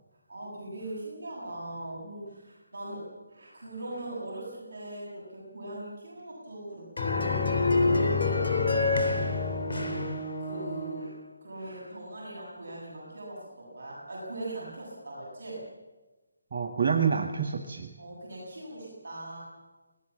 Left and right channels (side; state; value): both; inverted; correlation -0.65